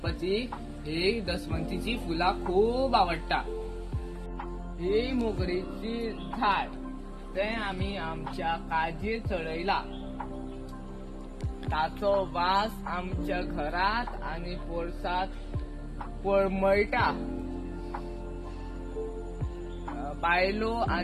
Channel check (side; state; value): both; identical; correlation 1.00